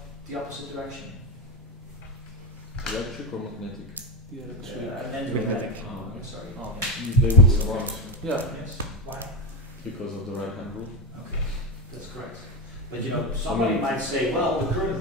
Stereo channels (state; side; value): normal; both; correlation 0.18